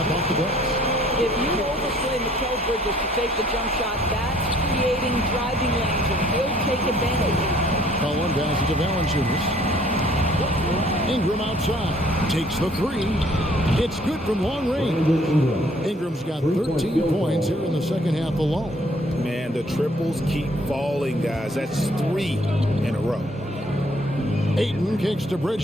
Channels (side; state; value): both; normal; correlation 0.60